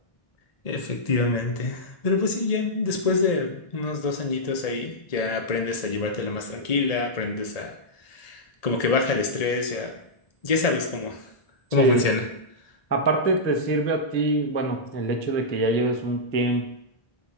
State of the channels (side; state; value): right; late; 1.7 ms